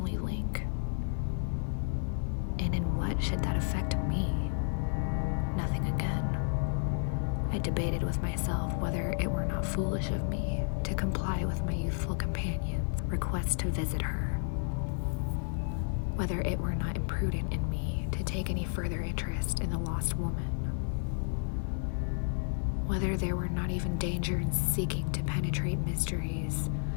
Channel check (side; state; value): right; silent; 57 dB below the other